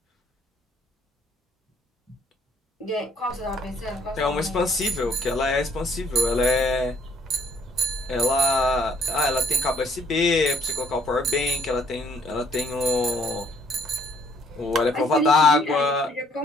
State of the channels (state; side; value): normal; both; correlation 0.64